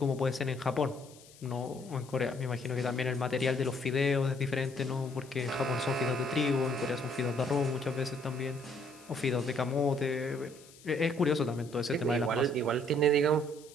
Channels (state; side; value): noise; left; hiss, 23 dB below the sound